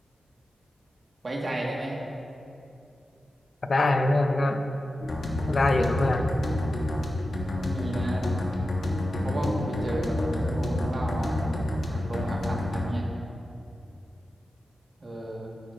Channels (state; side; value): normal; both; correlation 0.92